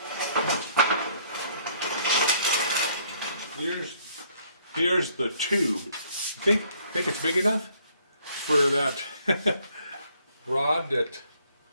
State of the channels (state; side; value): inverted; both; correlation -0.64